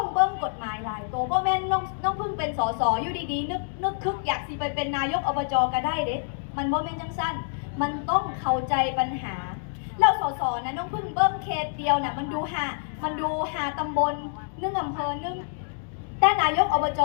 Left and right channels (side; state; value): right; silent; digital silence